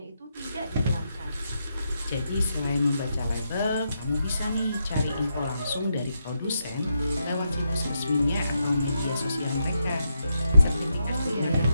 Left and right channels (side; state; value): both; inverted; correlation -0.83